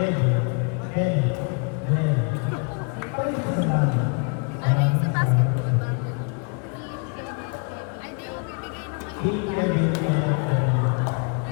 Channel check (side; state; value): right; quieter; 37.4 dB